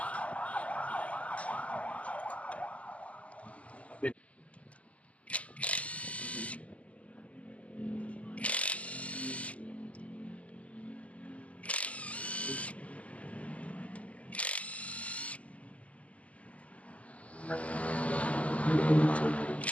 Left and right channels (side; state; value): right; late; 0.068 ms